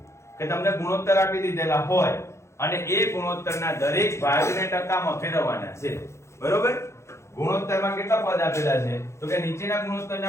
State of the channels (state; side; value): late; right; 0.13 ms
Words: કે તમને ગુણોત્તર આપી દીધેલા હોય અને એ ગુણોત્તરના દરેક ભાગને ટકામાં ફેરવવાના છે. બરોબર. ગુણોત્તરમાં કેટલા પદ આપેલા છે? તો કે નીચેના